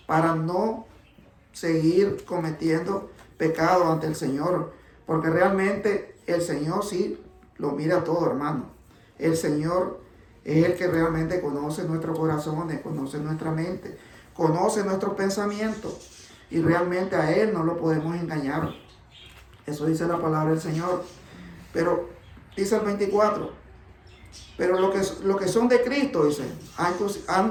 para no seguir cometiendo pecado ante el Señor. Porque realmente el Señor sí lo mira todo, hermano. El Señor es el que realmente conoce nuestros corazones, conoce nuestra mente, conoce nuestros pensamientos. Y realmente a Él no lo podemos engañar. Eso dice la palabra del Señor. Pero dice el 24. Pero lo que son de Cristo, dice,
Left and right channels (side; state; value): both; identical; correlation 1.00